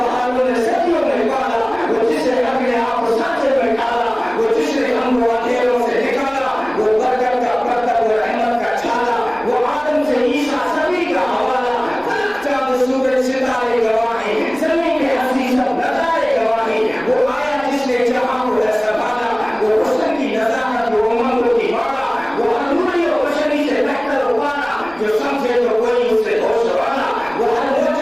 نے صدیوں میں پالا, وہ جس نے اپنے آپ کو سانچے میں ڈالا, وہ جس نے ہم کو اندھیروں سے نکالا, وہ برکت کا پرتب و رحمت کا چھالا, وہ آدم سے عیسیٰ سبھی کا حوالہ, فلک چاند سورج ستارے گواہیں, زمین کے ہستی سب نظارے گواہیں, وہ آیا جس نے جہاں کو ہے سنبھالا, وہ حسن کی نزاکت وہ امنگوں کی مالا, وہ انوری و بشری سے بہتر ابانا, جو سمجھے تو کوئی اس سے ہوش والا, وہ ہر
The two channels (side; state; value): right; noise; rumble, 26 dB below the sound